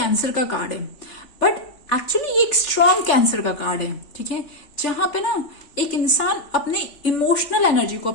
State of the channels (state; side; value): late; right; 3.5 ms